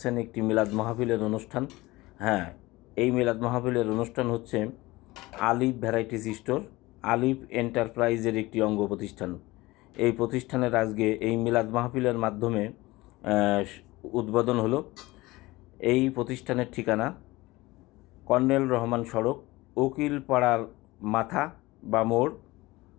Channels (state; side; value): quieter; right; 20.3 dB